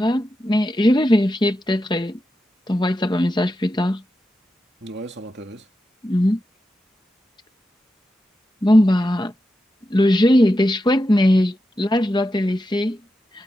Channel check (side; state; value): both; normal; correlation 0.89